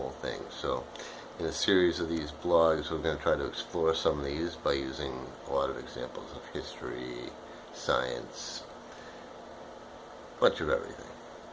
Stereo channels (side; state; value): both; identical; correlation 1.00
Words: thing. So in a series of these blogs, we're going to try to explore some of these by using a lot of examples of history, science, a bunch of everything.